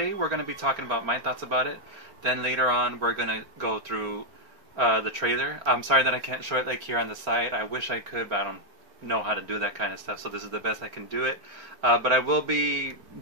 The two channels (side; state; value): left; late; 4.4 ms